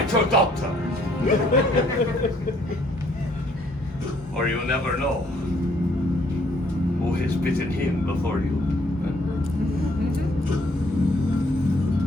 your doctor. Or you'll never know who has bitten him before you.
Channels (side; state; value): both; normal; correlation 0.65